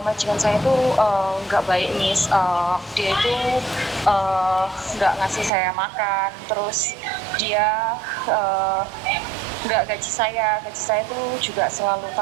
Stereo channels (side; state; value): left; drops out; at 5.5 s